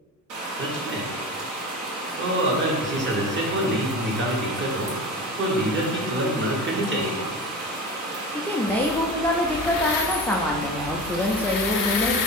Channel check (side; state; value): both; normal; correlation 0.31